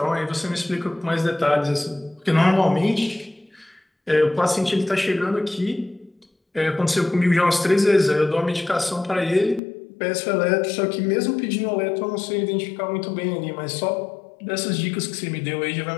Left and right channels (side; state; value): right; drops out; at 9.6 s